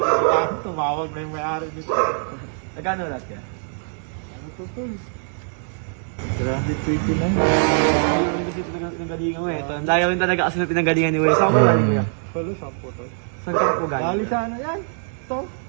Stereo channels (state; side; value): silent; left; 64 dB below the other